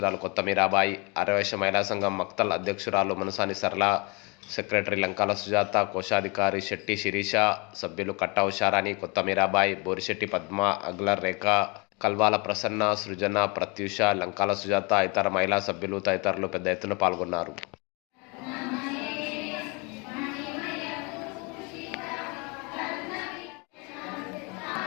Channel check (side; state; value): right; quieter; 29.9 dB